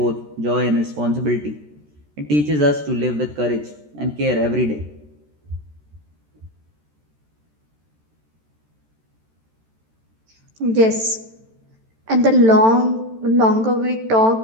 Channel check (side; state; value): left; late; 13 ms